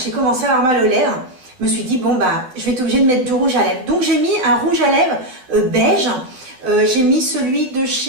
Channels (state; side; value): late; left; 12 ms